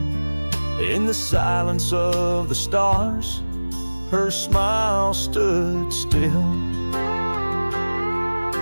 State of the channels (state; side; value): inverted; both; correlation -1.00